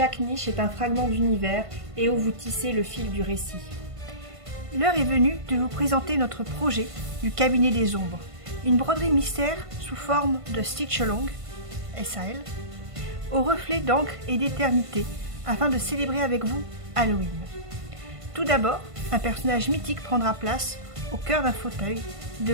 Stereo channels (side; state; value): left; late; 1.5 ms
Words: niche est un fragment d'univers et où vous tissez le fil du récit. L'heure est venue de vous présenter notre projet du cabinet des ombres. Une broderie mystère sous forme de stitch along, SAL, au reflet d'encre et d'éternité, afin de célébrer avec vous Halloween. Tout d'abord, un personnage mythique prendra place au cœur d'un fauteuil